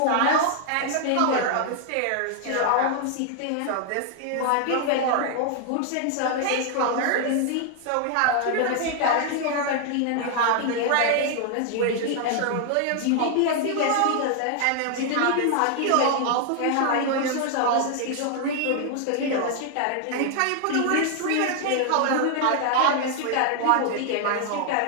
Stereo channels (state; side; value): different; both; correlation 0.00